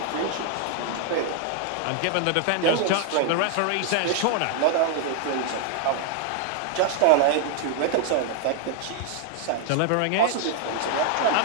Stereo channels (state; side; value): different; both; correlation 0.00